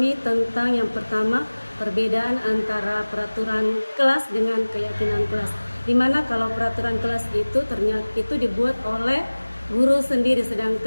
tentang yang pertama, perbedaan antara peraturan kelas dengan keyakinan kelas. Dimana kalau peraturan kelas itu ternyata itu dibuat oleh guru sendiri,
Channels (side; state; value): both; inverted; correlation -1.00